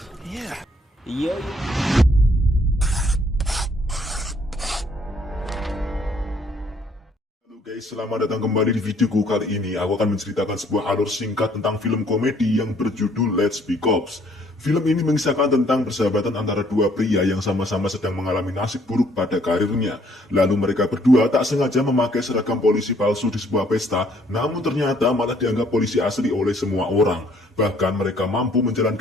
Iya. Halo guys, selamat datang kembali di videoku. Kali ini aku akan menceritakan sebuah alur singkat tentang film komedi yang berjudul Let's Be Cops. Film ini mengisahkan tentang persahabatan antara dua pria yang sama-sama sedang mengalami nasib buruk pada karirnya. Lalu mereka berdua tak sengaja memakai seragam polisi palsu di sebuah pesta, namun ternyata malah dianggap polisi asli oleh semua orang. Bahkan mereka mampu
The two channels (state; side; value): normal; both; correlation 0.64